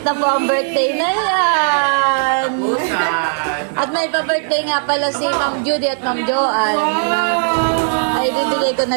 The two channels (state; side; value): silent; left; 60 dB below the other